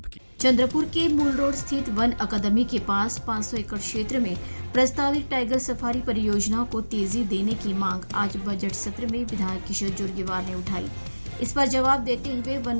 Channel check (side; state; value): both; inverted; correlation -1.00